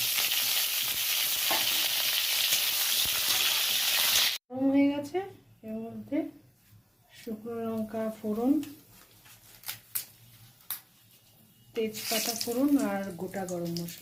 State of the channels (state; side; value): identical; both; correlation 1.00